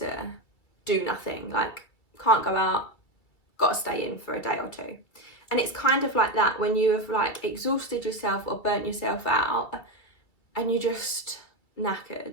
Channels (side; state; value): right; late; 2.5 ms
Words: do nothing, like can't go out, got to stay in for a day or two. And it's kind of like that when you have like exhausted yourself or burnt yourself out and you're just